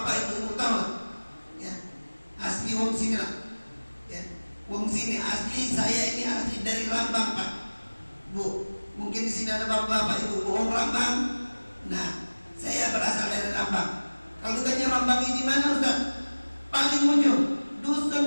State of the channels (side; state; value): both; inverted; correlation -1.00